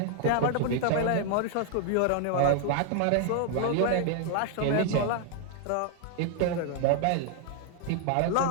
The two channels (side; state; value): both; different; correlation 0.00